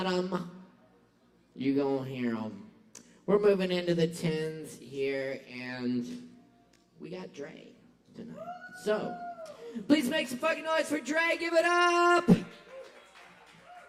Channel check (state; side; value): identical; both; correlation 1.00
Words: them. You gonna hear them. We're moving into the 10s here, and we got Dre tonight. So, please make some fucking noise for Dre. Give it up!